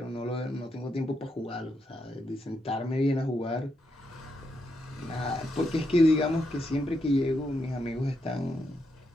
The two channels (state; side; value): normal; both; correlation 0.81